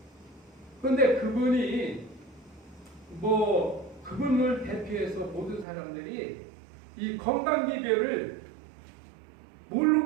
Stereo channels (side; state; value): left; drops out; at 5.7 s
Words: 근데 그분이 그분을 대표해서 모든 사람들이 이 건강 비결을